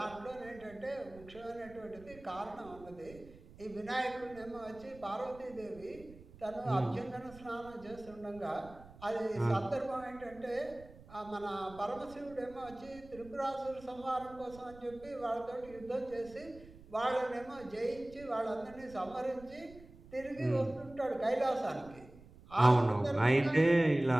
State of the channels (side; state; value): right; noise; rumble, 20 dB below the sound